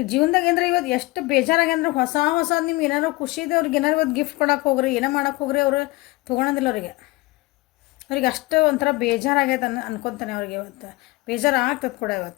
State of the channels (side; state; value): right; quieter; 21.4 dB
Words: ಜೀವನದಾಗ ಏನಂದ್ರೆ ಇವತ್ತು ಎಷ್ಟು ಬೇಜಾರಾಗ್ಯಂದ್ರೆ ಹೊಸ ನಿಮ್ಗೆ ಏನಾರು ಖುಷಿ ಇದೆ ಅವ್ರಿಗೆ ಏನಾರು ಇವತ್ತು ಗಿಫ್ಟ್ ಕೊಡೋಕೆ ಹೋಗ್ರಿ, ಏನೋ ಮಾಡೋಕೆ ಹೋಗ್ರಿ, ಅವರು ತೊಗೊಳೋದಿಲ್ಲ ಅವ್ರಿಗೆ ಅಷ್ಟು ಒಂಥರ ಬೇಜಾರಾಗೈತೆ ಅನ್ಕೊತಾನೆ ಅವ್ರಿಗೆ. ಇವತ್ತು ಬೇಜಾರು ಆಗ್ತದೆ ಕೂಡ